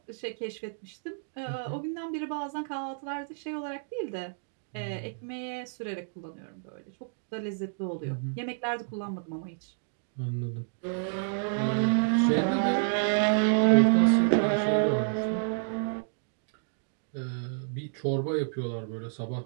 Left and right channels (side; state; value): left; silent; digital silence